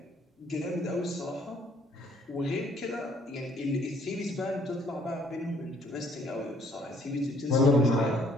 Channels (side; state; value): both; normal; correlation 0.62